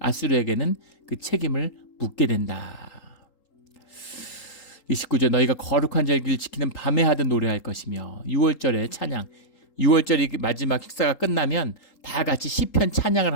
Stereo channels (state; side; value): late; right; 3.8 ms